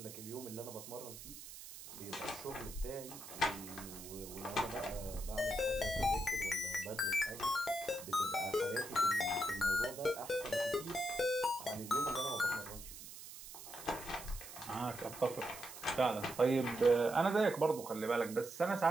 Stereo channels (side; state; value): right; noise; hiss, 13 dB below the sound